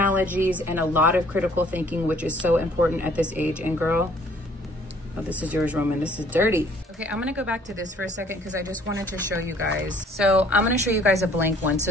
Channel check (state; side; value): normal; both; correlation 0.58